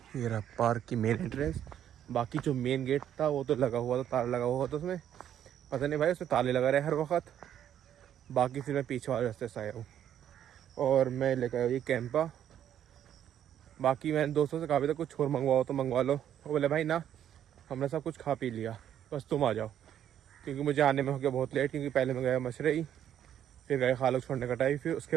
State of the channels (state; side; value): quieter; left; 10.2 dB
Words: रहा पार्क की मेन एंट्रेंस। बाकी जो मेन गेट था वो तो लगा हुआ था, ताला लगा हुआ था उसमें। पता नहीं भाई उसमें ताले लगा रहे हर वक्त। बाकी फिर मैं पीछे वाले रास्ते से आया हूँ, और मैं लेकर आया ये कैंपा। बाकी मैंने दोस्तों से कहा भी था कुछ और मंगवाओ तो मंगवा लो। वो बोले भाई ना, हमने सब कुछ खा पी लिया, बस तुम आ जाओ। क्योंकि मुझे आने में हो गया बहुत लेट, क्योंकि पहले मैं गया मशरई, फिर गए खालक छोड़ने कटाई, फिर उसके